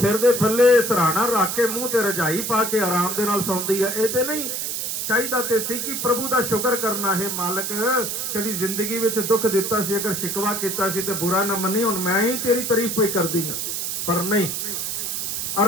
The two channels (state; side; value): noise; right; hiss, 2 dB below the sound